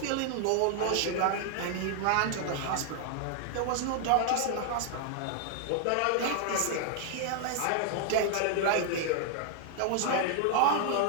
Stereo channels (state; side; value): different; both; correlation 0.00